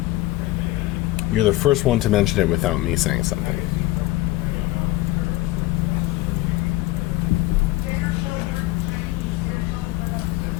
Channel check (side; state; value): right; quieter; 17.9 dB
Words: You're the first one to mention it without me saying something.